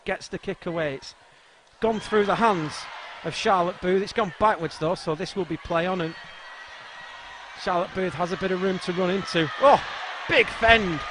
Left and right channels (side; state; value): both; identical; correlation 1.00